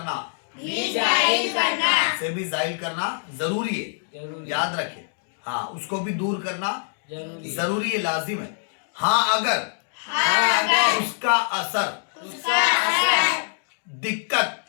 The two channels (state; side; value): silent; right; digital silence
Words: जरूरी है। याद रखे, हाँ, उसको भी दूर करना जरूरी है, लाजिम है। हाँ, अगर उसका असर दिक्कत